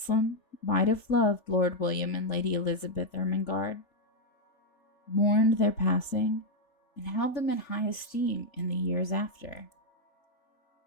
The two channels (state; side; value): late; right; 3.4 ms